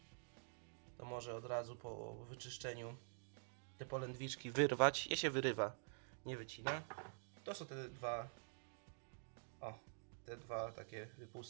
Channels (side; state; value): left; silent; digital silence